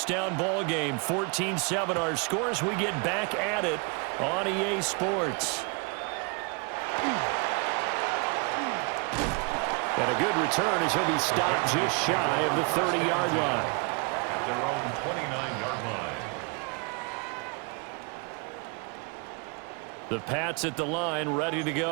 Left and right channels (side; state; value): left; quieter; 32.8 dB